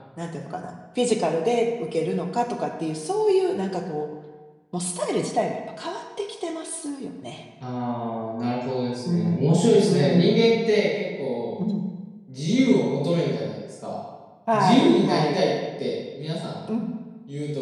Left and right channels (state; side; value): identical; both; correlation 1.00